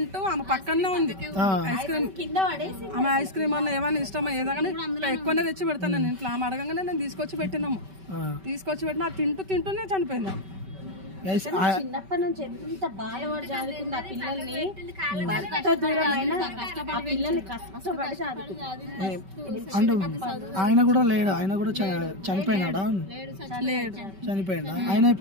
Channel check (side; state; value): left; late; 5.2 ms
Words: ఆమె పక్కనే ఉంది, ఐస్ క్రీమ్ కింద పడేసి ఆమె ఐస్ క్రీమ్ అన్న ఏమైనా ఇష్టమా ఏదైనా ఎక్కువనే తెచ్చి పెడతాను నేను ఇంట్లో. ఆమె అడగంగానే నేను తీసుకొచ్చి పెట్టినాము, తీసుకొచ్చి పెట్టినా తింటూనే చనిపోయింది. చిన్నప్పటి నుంచి ఎంత బాధపడి చదువుకుంది ఆ పిల్లల్ని, భర్త దూరమైన ఆ పిల్లల్ని కష్టపడి చదువుకుంది. అంటే ఆయన కూడా లేడు, ఆయన కూడా చనిపోయినాడా? చనిపోయినా ఆయన